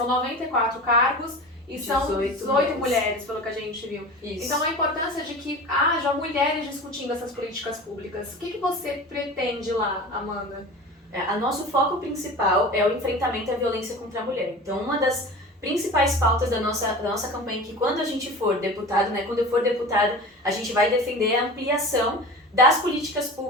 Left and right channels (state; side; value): normal; both; correlation 0.34